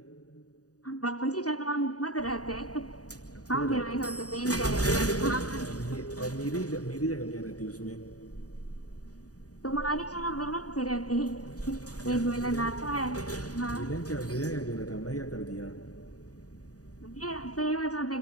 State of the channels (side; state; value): right; late; 0.67 ms